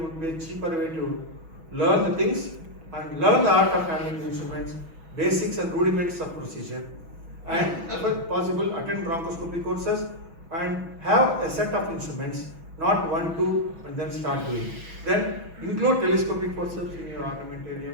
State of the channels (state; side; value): late; left; 6.1 ms